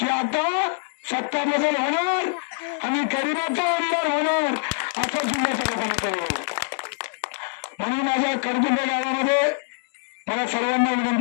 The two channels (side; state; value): right; silent; digital silence